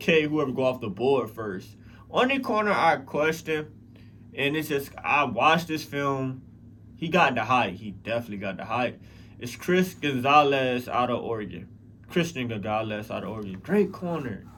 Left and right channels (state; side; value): identical; both; correlation 1.00